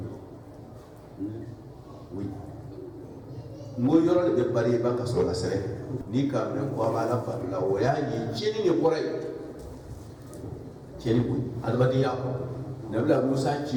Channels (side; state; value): both; identical; correlation 1.00